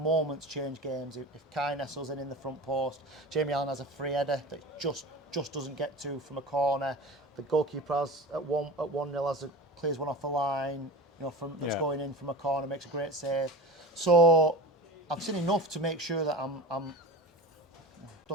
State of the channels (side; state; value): both; normal; correlation 0.33